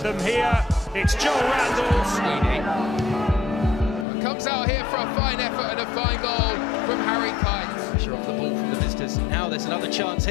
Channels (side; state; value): right; drops out; at 4.0 s